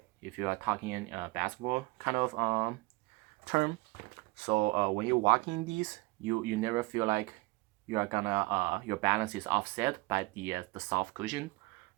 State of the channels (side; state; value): left; quieter; 23.9 dB